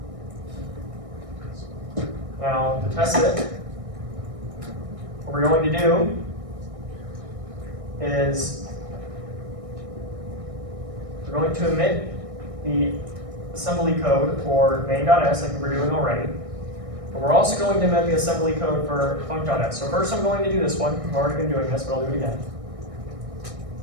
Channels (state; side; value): late; left; 1.6 ms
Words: Now, to test it, what we're going to do is we're going to omit the assembly code for main.s like we were doing already. But we're also going to omit the assembly code for func.s. So first I'm going to do this one. I've already been doing this, but I'll do it again.